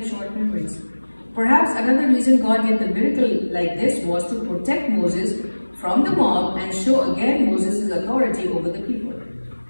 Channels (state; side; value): inverted; both; correlation -1.00